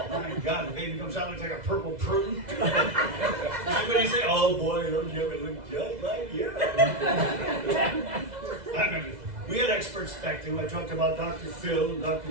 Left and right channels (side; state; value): left; late; 2.0 ms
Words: My God, the baby comes out looks like a purple prune. Everybody say, oh boy, those never look just like you. I remember. We had experts back then. I talked about Dr. Phil and Dr.